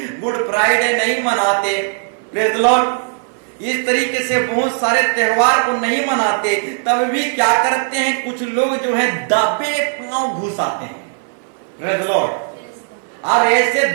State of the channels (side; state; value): left; silent; 59 dB below the other